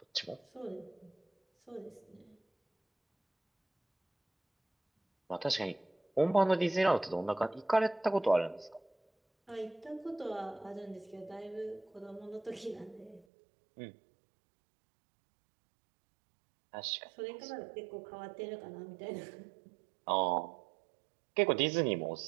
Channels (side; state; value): left; drops out; at 13.2 s